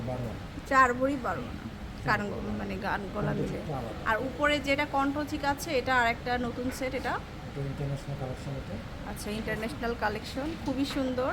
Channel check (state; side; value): identical; both; correlation 1.00